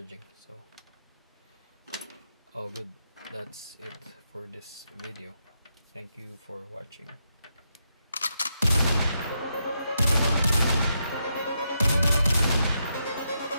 so all good. That's it for this video. Thank you for watching.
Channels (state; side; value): inverted; both; correlation -0.82